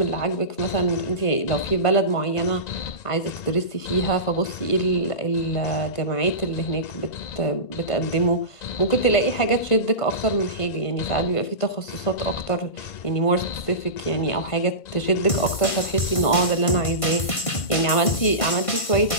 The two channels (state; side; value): late; right; 1.5 ms